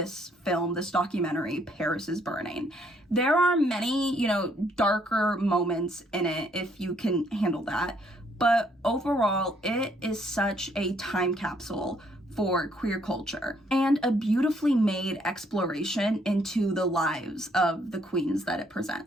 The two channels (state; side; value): normal; both; correlation 0.68